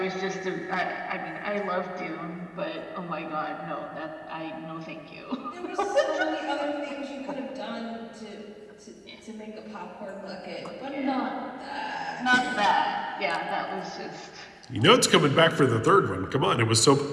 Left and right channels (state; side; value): identical; both; correlation 1.00